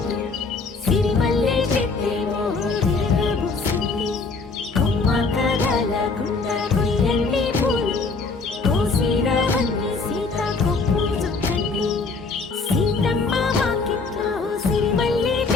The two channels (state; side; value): quieter; right; 4.1 dB